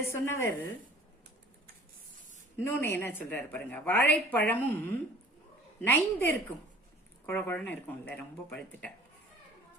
சொன்னவர் இன்னொன்னு என்ன சொல்றாரு பாருங்க. வாழைப்பழமும் நைந்து இருக்கும், குழகுழன்னு இருக்கும்ல, ரொம்ப பழுத்துட்டா.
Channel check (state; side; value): normal; both; correlation 0.48